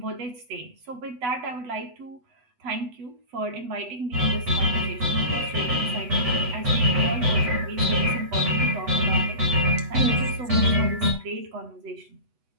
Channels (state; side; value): late; left; 8.0 ms